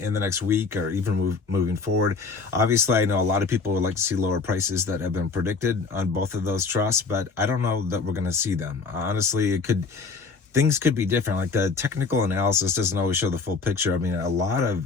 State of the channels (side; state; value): right; quieter; 4.6 dB